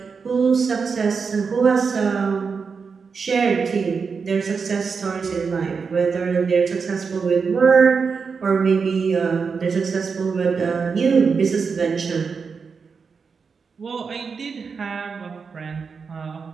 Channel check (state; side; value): quieter; left; 5.4 dB